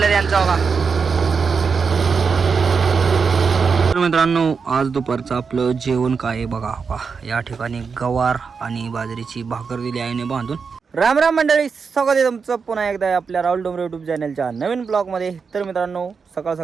त्यांचं बघा. तर मित्रांनो आज दुपारचं आपलं जेवण काय आहे बघा हो का. या ठिकाणी गवार आणि बाजरीची भाकर दिली आईने बांधून. राम राम मंडळी, स्वागत आहे तुमचं पुन्हा एकदा आपल्या राहुल डोंगरे यूट्यूब चॅनलच्या नवीन ब्लॉगमध्ये. तर मित्रांनो सकाळ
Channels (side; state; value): left; quieter; 5.5 dB